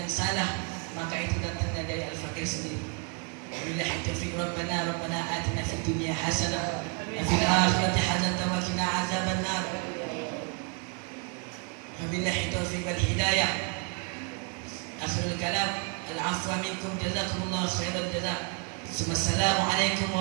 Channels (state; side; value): quieter; left; 35.4 dB